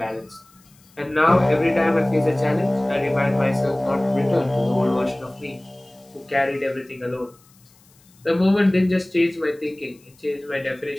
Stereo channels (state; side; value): noise; left; hiss, 30 dB below the sound